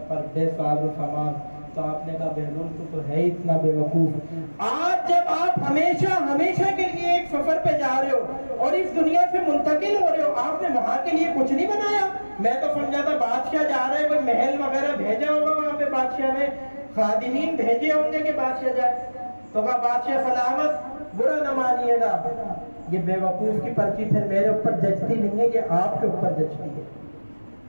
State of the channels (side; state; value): both; inverted; correlation -1.00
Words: پر بے ساز و سامان، تو آپ نے کہا بہلول تو ہے اتنا بے وقوف، آج جب آپ ہمیشہ کے لیے ایک سفر پہ جا رہے ہو اور اس دنیا سے منتقل ہو رہے ہو، آپ نے وہاں کے لیے کچھ نہیں بنایا؟ میں تو سمجھا تھا بادشاہ جا رہا ہے، کوئی محل وغیرہ بھیجا ہوگا، وہاں پہ بادشاہ نے خادمین بھیجے ہوں گے کہ بادشاہ جائے۔ تو کہا بادشاہ سلامت، برا نہ مانیے گا، یہ بے وقوف کی پرچی پھر میرے اوپر جچتی نہیں ہے، یہ آپ کے اوپر جچتی ہے،